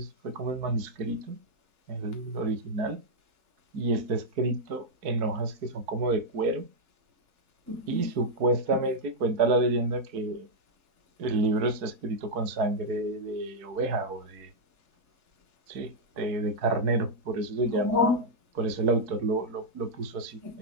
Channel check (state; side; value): late; left; 4.6 ms